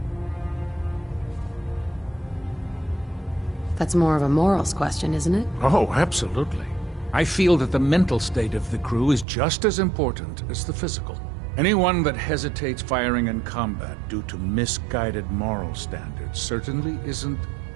That's more of a morals question, isn't it? Oh, absolutely. I feel that the mental state of the crew is just as important as the physical. Anyone that hesitates firing in combat due to misguided moral standards certainly isn't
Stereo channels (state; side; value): drops out; left; at 9.2 s